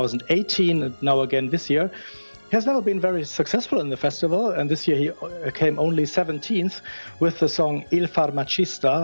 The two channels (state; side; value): inverted; both; correlation -1.00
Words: and now again this year. He has never been very successful in the festival, and this year he came only 17th with the song Il